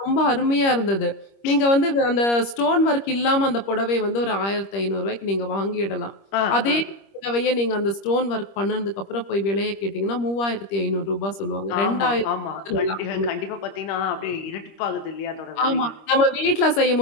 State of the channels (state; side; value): late; right; 25 ms